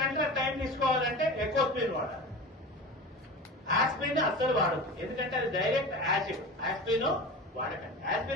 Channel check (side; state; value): both; normal; correlation 0.31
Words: గంటల టైం తీసుకోవాలంటే ఎకోస్పిన్ వాడాలి. ఆస్పిరిన్ అస్సలు వాడద్దు, ఎందుకంటే అది డైరెక్ట్ యాసిడ్. ఆస్పిరిన్ వాడకండి.